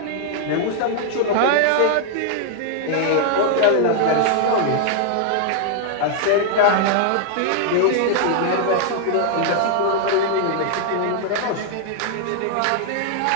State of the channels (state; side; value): different; both; correlation -0.01